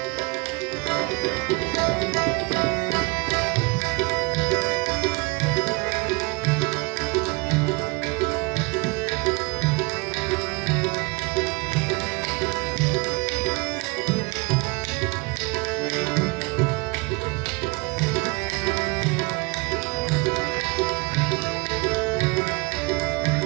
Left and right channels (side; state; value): left; quieter; 27.5 dB